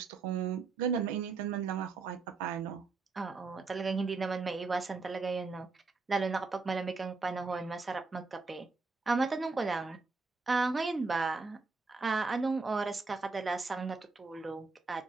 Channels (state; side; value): quieter; left; 4.1 dB